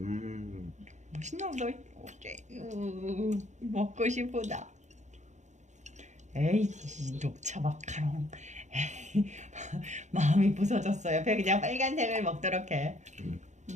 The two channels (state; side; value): late; left; 0.34 ms